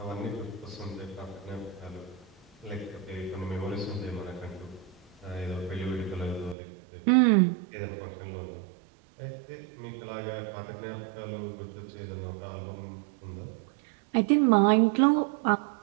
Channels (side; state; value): left; drops out; at 6.6 s